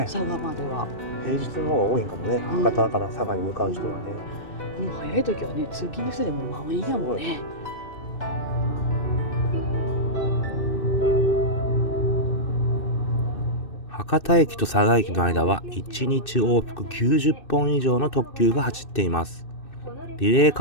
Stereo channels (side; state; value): right; late; 2.6 ms